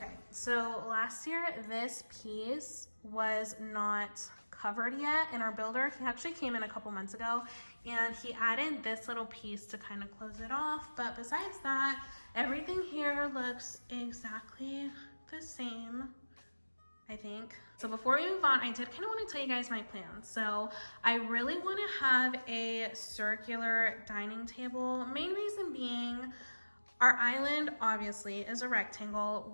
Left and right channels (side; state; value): both; inverted; correlation -1.00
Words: so last year this piece was not covered yet in our builder. He actually came in a couple months ago and he added this little piece to kind of close it off. But besides that, everything here looks exactly the same, I think. So before we move on, I did kind of want to tell you guys my plans. So I really want to have a circular dining table. Main reason being, our island obviously is a